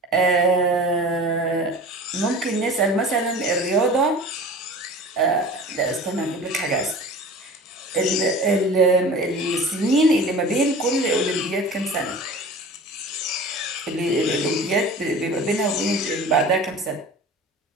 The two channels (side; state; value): both; normal; correlation 0.39